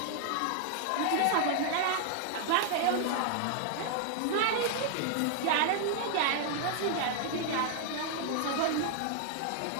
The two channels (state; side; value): different; both; correlation 0.00